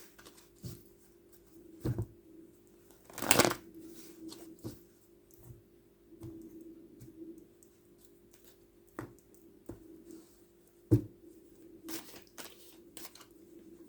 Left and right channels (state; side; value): identical; both; correlation 1.00